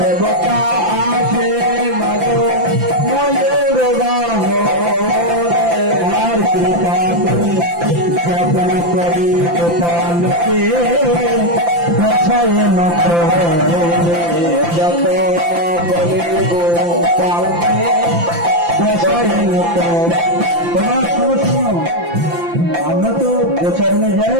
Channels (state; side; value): late; left; 5.8 ms